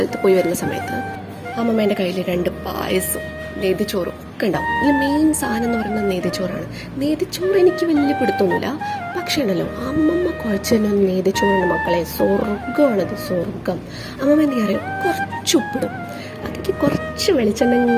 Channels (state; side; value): identical; both; correlation 1.00